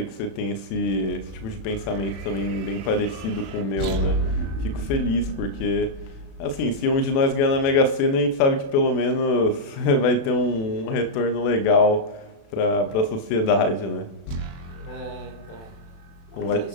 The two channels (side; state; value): right; late; 36 ms